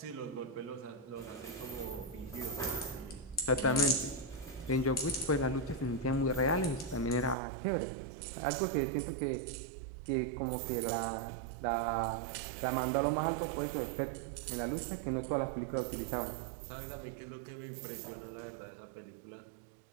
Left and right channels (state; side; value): drops out; left; at 7.4 s